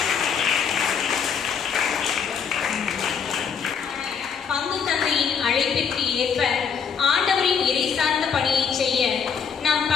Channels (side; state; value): right; quieter; 6.7 dB